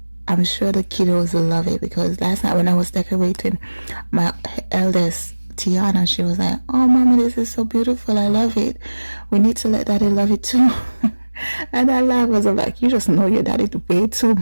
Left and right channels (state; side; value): inverted; both; correlation -1.00